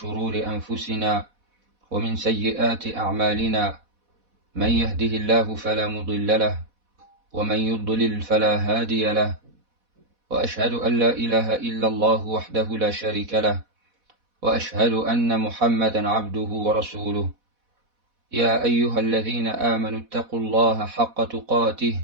أنفسنا ومن سيئات أعمالنا. من يهده الله فلا مضل له ومن يضلل فلا هادي له، وأشهد أن لا إله إلا الله وحده لا شريك له، وأشهد أن محمدا عبده ورسوله. يا أيها الذين آمنوا اتقوا الله حق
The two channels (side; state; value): left; late; 4.1 ms